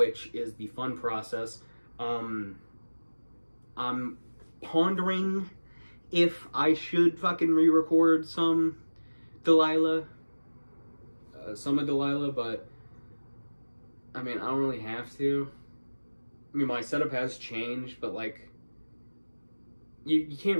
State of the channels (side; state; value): both; inverted; correlation -1.00